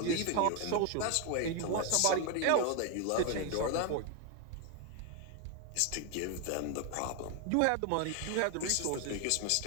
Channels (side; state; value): both; different; correlation 0.01